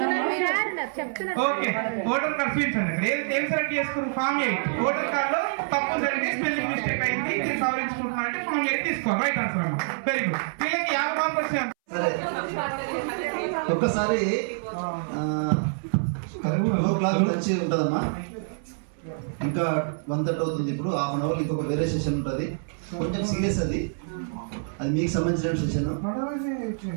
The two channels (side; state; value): left; silent; 61 dB below the other